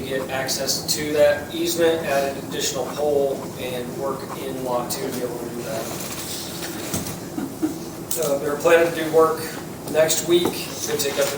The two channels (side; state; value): both; identical; correlation 1.00